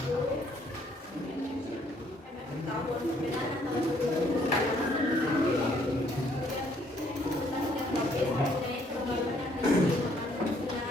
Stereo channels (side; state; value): both; normal; correlation 0.66